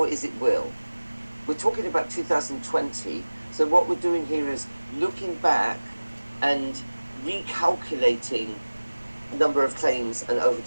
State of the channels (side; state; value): both; inverted; correlation -1.00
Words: is it will? We're talking about 2020, so what we're doing here is looking back and recalculating number of claims and